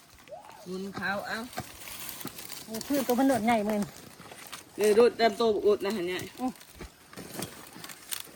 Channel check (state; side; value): identical; both; correlation 1.00